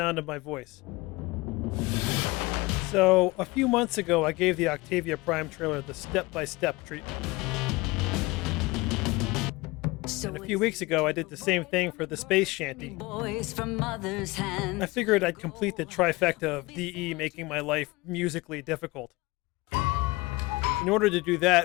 of my voice. So, a few months ago, I gave the Octavia Prime trailer the step-by-step treatment. And a few weeks ago, I did the same thing for the Space Shanty. I figured I'd complete the trifecta of DE making my life musically difficult. In order to do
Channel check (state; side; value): quieter; right; 22.6 dB